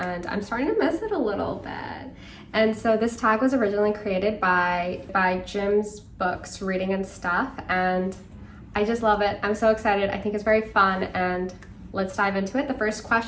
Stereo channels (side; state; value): both; identical; correlation 1.00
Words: I'm starting to miss it a little bit. And so this tag was originally created by Jim's books, Reading and Stuff, and I just love it. I'm so excited. I think it's very fun and let's dive into it. The first